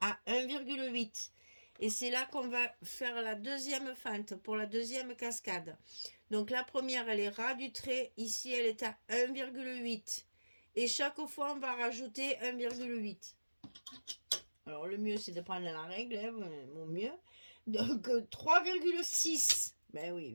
à 1,8. Et c'est là qu'on va faire la deuxième fente pour la deuxième cascade. Donc la première, elle est ras du trait. Ici, elle est à 1,8. Et chaque fois, on va rajouter 1,8. Alors le mieux, c'est de prendre la règle, hein, mon mieux. Donc 3,6. Ben oui,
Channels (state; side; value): inverted; both; correlation -1.00